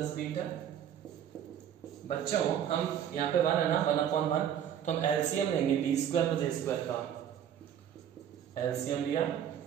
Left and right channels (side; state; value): left; quieter; 9.5 dB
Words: beta, बच्चों हम यहाँ पे 1 है ना, 1/1, तो हम एलसीएम लेंगे बी स्क्वायर प्लस ए स्क्वायर का, एलसीएम लिया,